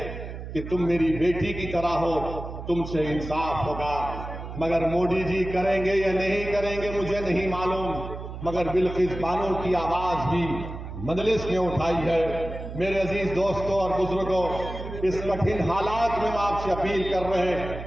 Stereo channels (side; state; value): right; noise; hum, 9 dB below the sound